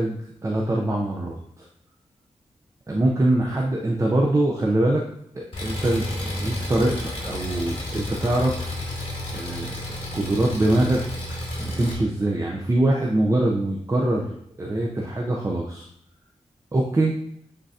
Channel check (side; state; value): both; normal; correlation 0.88